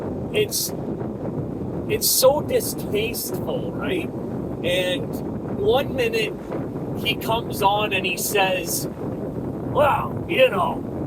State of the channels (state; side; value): identical; both; correlation 1.00